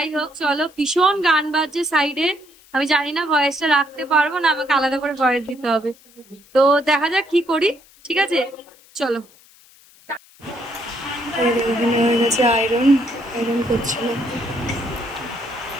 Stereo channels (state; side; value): noise; left; hiss, 27 dB below the sound